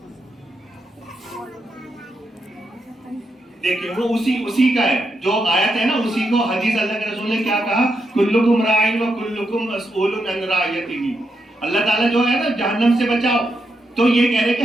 دیکھیں، وہ اسی کا ہے جو آیت ہے نا، اسی کو حدیث اللہ کے رسول نے کیا کہا، کلکم راعٍ و کلکم مسئول عن رعیتہ. اللہ تعالیٰ جو ہے نا جہنم سے بچاؤ، تو یہ کہہ رہے کہ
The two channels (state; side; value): normal; both; correlation 0.83